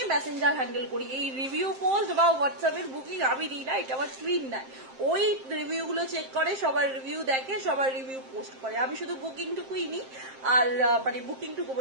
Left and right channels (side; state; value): left; late; 7.6 ms